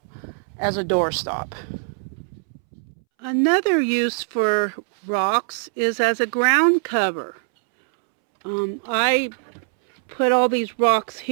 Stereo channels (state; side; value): silent; left; 64 dB below the other